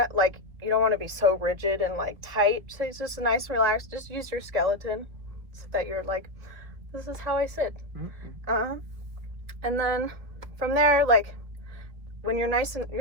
like you don't want to be so rigid and like tight. So it's just a nice relaxed. Just use your skeleton so that you're like, this is how I sit. And then from there, like when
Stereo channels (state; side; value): late; left; 1.8 ms